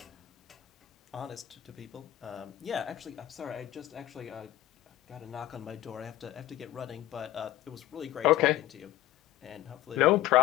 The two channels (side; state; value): right; quieter; 14.7 dB